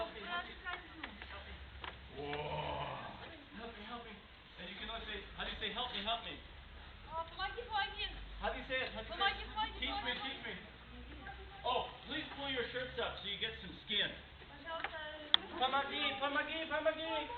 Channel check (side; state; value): both; identical; correlation 1.00